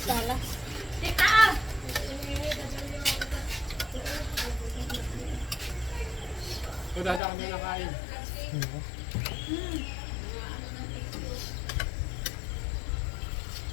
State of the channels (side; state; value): right; drops out; at 7.2 s